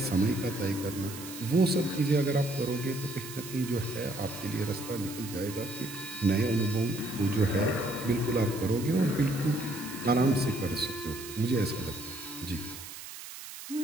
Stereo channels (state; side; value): noise; right; hiss, 12 dB below the sound